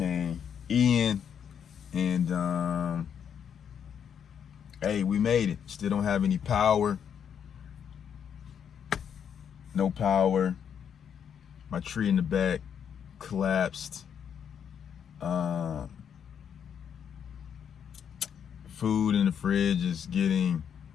Ian, and hey, we made it. Still don't have any power. No power. My tree in the back collapsed. Food in the fridge is getting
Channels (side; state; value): right; quieter; 8.1 dB